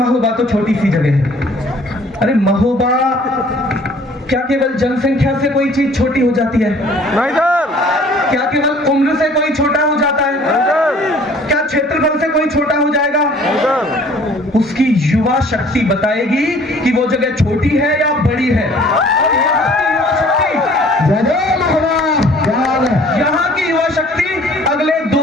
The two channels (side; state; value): both; normal; correlation 0.53